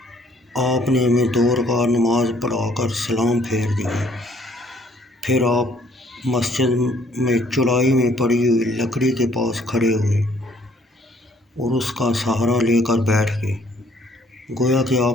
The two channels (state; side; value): normal; both; correlation 0.62